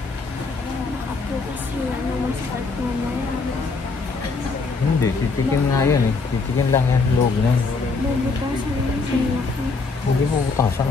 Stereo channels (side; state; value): right; quieter; 4.2 dB